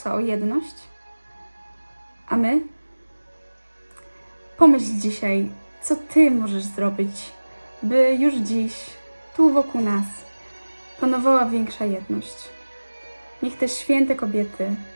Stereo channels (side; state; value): both; inverted; correlation -1.00